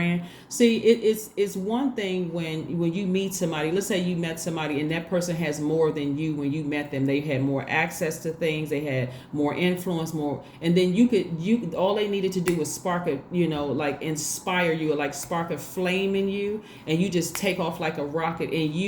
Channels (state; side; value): identical; both; correlation 1.00